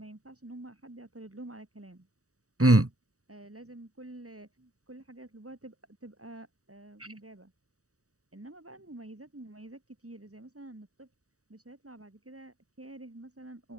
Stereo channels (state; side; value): late; left; 0.66 ms